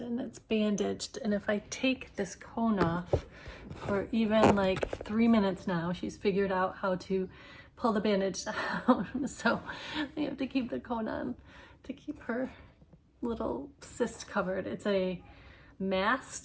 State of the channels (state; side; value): identical; both; correlation 1.00